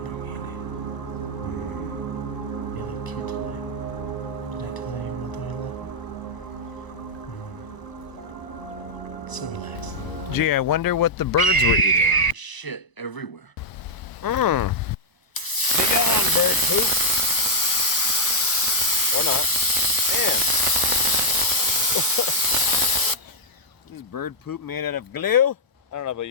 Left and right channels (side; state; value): right; late; 1.0 ms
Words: You look cute tonight. Did I tell you what I love? So relaxing. Gee, I wonder what the birds were eating. Shit everywhere. Be gone, bird poop. Or not. And this bird poop made out of glue? I don't know about